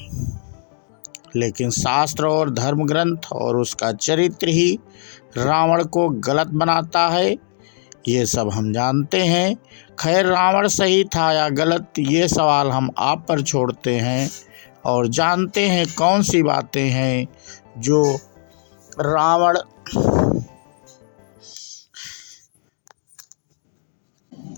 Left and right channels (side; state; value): right; silent; digital silence